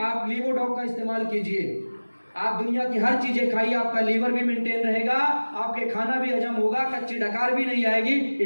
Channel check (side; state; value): both; inverted; correlation -1.00